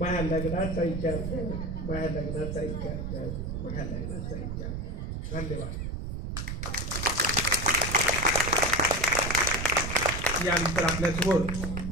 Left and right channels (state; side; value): noise; right; rumble, 4 dB below the sound